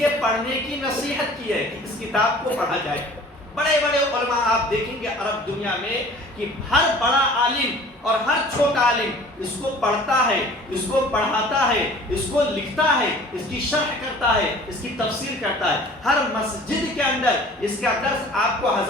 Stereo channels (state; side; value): normal; both; correlation 0.47